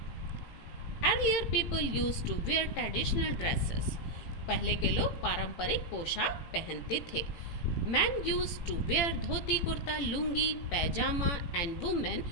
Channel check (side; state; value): right; late; 18 ms